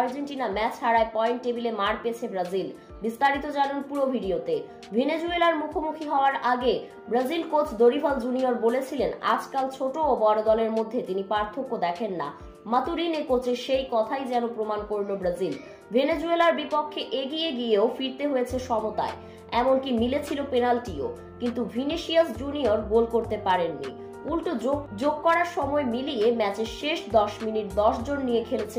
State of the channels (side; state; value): both; identical; correlation 1.00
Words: ম্যাচ হারায় পয়েন্ট টেবিলে মার পেয়েছে ব্রাজিল। বিস্তারিত জানুন পুরো ভিডিওতে। ভেনেজুয়েলার মুখোমুখি হওয়ার আগে ব্রাজিল কোচ দরিভাল জুনিয়র বলেছিলেন, আজকাল ছোট ও বড় দলের মধ্যে তিনি পার্থক্য দেখেন না। মাতুরিনে কোচের সেই কথাই যেন প্রমাণ করল ব্রাজিল। ভেনেজুয়েলার বিপক্ষে এগিয়ে গিয়েও ফিরতে হয়েছে সমতায়, এমনকি মিলেছিল পেনাল্টিও, কিন্তু ভিনিসিয়াস জুনিয়র গোল করতে পারেননি। উল্টো যোগ করার সময় মিলিয়ে ম্যাচের শেষ 10 মিনিট 10 জন নিয়ে খেলেছে